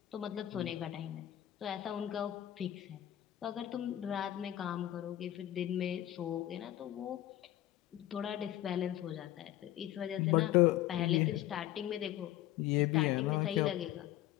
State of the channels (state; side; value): quieter; right; 13.5 dB